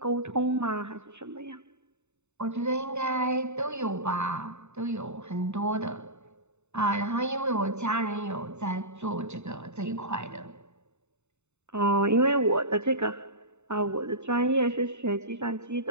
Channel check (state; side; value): late; left; 0.82 ms